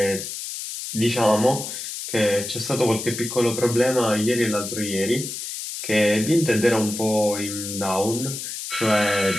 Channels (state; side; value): noise; left; hiss, 7 dB below the sound